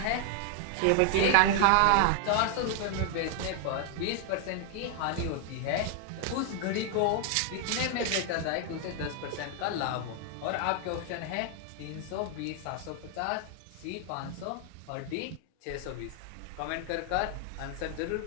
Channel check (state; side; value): different; both; correlation 0.00